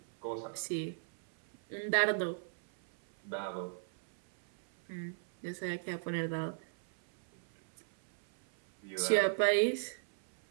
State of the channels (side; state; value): left; silent; 53 dB below the other